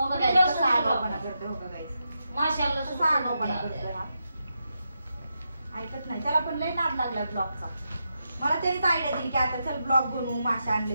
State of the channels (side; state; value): both; inverted; correlation -0.85